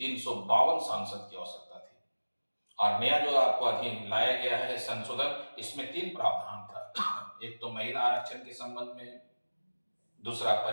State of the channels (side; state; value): both; inverted; correlation -1.00